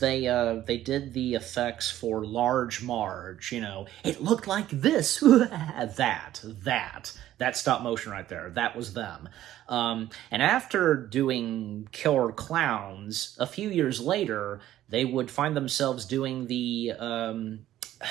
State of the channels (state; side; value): quieter; left; 13.2 dB